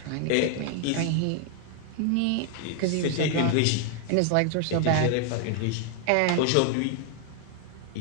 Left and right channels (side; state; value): both; different; correlation 0.00